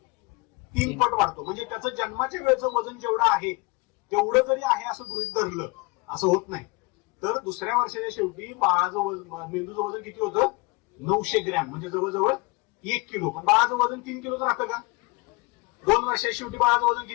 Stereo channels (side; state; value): right; quieter; 26.9 dB